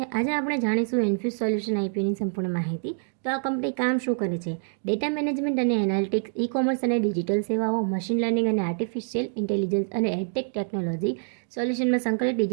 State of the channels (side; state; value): left; silent; digital silence